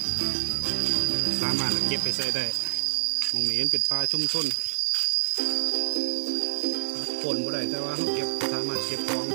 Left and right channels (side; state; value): left; silent; digital silence